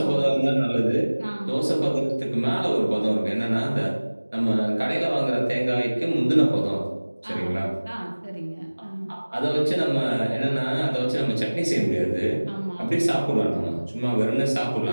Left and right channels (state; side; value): inverted; both; correlation -1.00